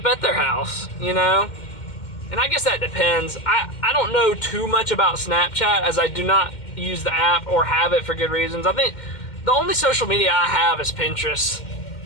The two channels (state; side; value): late; right; 2.1 ms